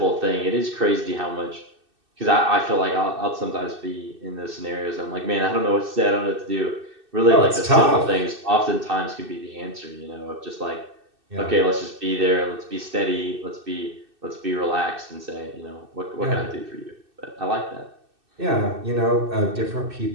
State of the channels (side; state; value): left; late; 2.6 ms